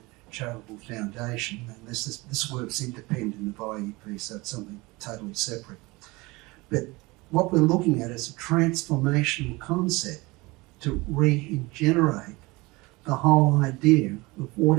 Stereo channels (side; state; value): left; quieter; 23.3 dB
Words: Charitable Foundation, and this work's independent of IEP, so it's something totally separate. But what we're looking at is a transformational concept to regenerate the whole idea of